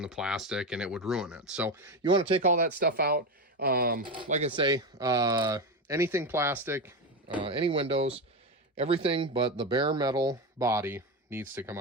the plastic, and it would ruin it. So you want to take all that stuff out. Like I say, anything plastic, any windows, everything but the bare metal body needs to come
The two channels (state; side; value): normal; both; correlation 0.15